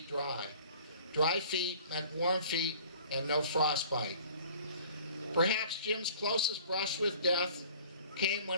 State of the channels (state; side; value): inverted; both; correlation -0.49